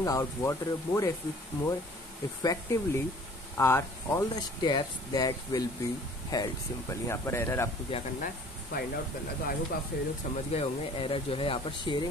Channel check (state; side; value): normal; both; correlation 0.51